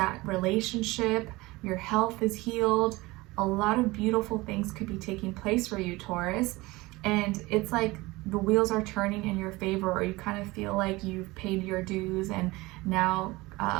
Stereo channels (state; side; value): quieter; left; 21.3 dB